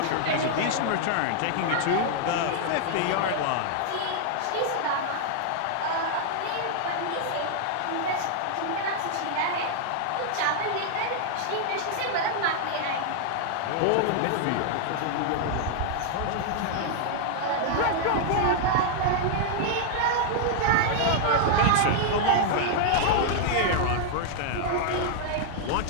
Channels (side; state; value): both; different; correlation -0.01